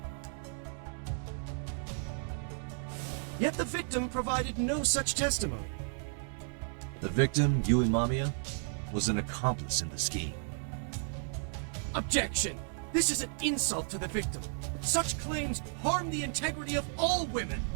Yet the victim provided no such testimony. The victim, Yui Mamiya, was an accomplice in the scheme. Objection! This is an insult to the victim. Such claims harm the integrity of all women.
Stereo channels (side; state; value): left; silent; 55 dB below the other